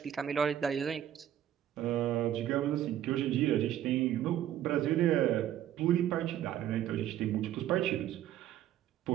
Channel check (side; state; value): left; quieter; 11.4 dB